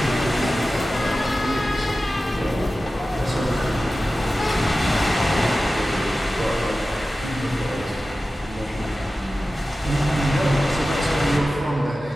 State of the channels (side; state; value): both; normal; correlation 0.95